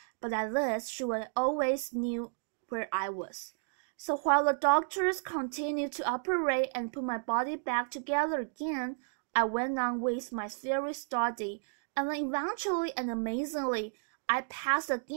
But at least she would always knew where I was. So while the doctors continued to operate and put my body back together again, I went on with my theory study, and then eventually and amazingly, I passed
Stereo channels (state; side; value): silent; left; digital silence